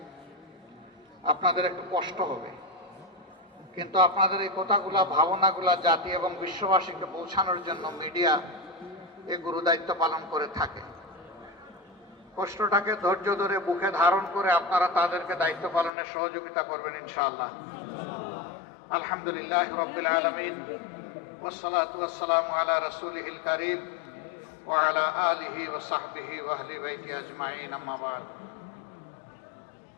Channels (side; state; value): right; drops out; at 15.9 s